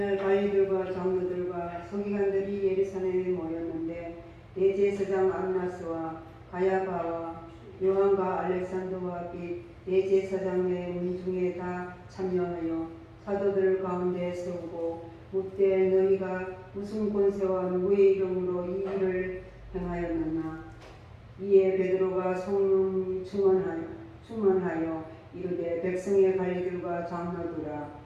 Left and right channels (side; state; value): both; identical; correlation 1.00